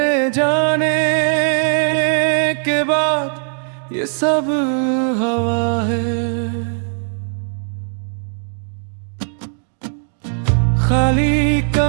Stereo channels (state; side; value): silent; left; digital silence